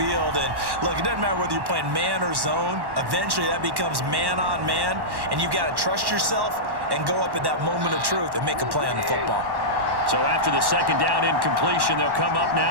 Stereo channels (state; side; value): late; left; 1.1 ms